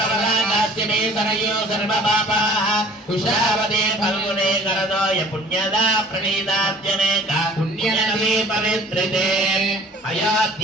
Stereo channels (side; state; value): both; normal; correlation 0.50